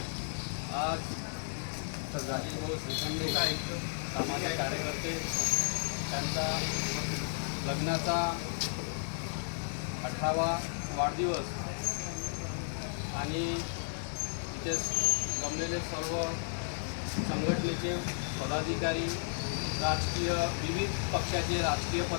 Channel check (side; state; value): right; silent; 55 dB below the other